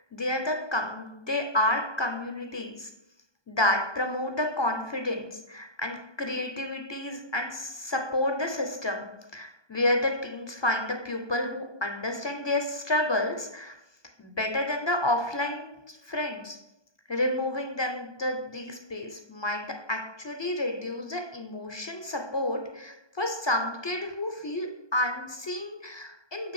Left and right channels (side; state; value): right; late; 1.2 ms